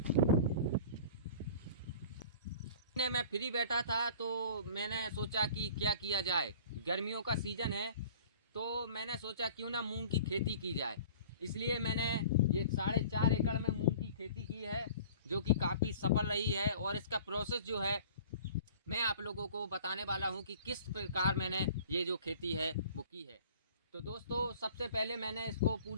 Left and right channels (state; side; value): inverted; both; correlation -0.45